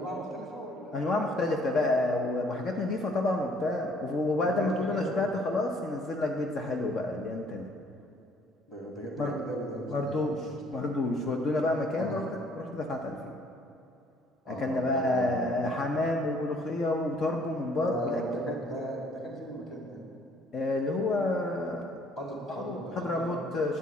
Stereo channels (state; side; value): normal; both; correlation 0.61